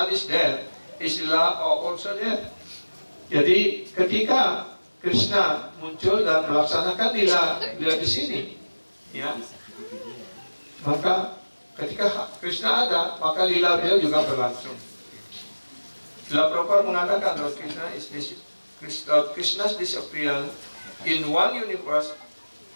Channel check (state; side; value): inverted; both; correlation -1.00